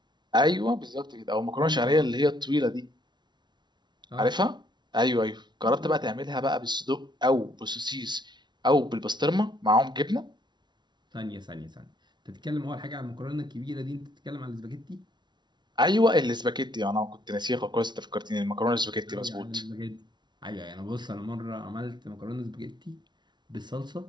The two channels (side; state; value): left; late; 0.21 ms